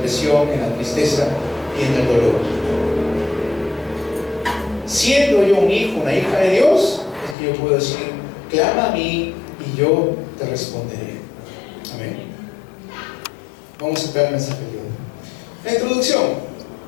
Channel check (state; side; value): drops out; right; at 7.4 s